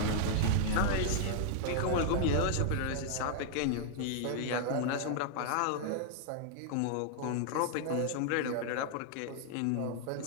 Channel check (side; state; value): both; different; correlation -0.01